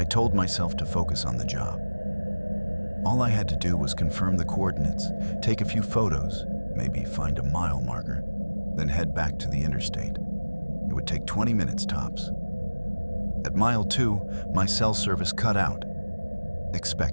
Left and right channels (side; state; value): both; inverted; correlation -1.00